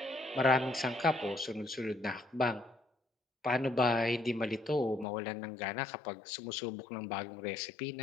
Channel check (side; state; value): right; drops out; at 5.1 s